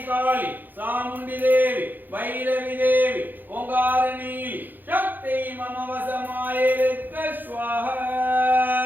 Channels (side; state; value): left; late; 0.088 ms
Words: காளி சாமுண்டி தேவி பைரவி தேவி ஓங்காரணி சக்தி மம வசமாயிருக்க ஸ்வாஹா.